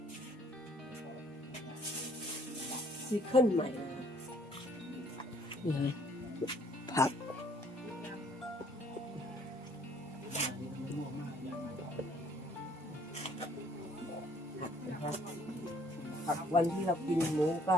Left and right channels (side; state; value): both; normal; correlation 0.61